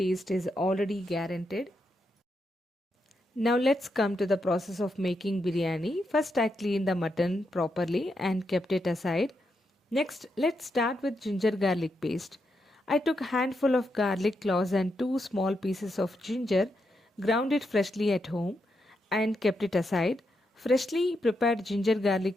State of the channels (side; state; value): both; normal; correlation 0.83